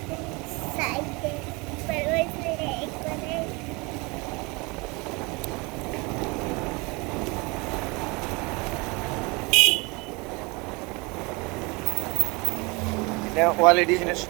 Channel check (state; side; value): quieter; left; 27.0 dB